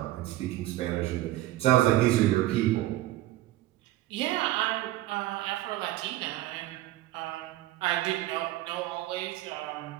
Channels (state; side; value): quieter; left; 15.8 dB